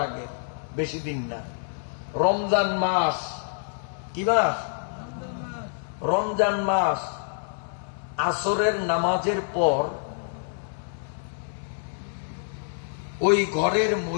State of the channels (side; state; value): right; silent; 60 dB below the other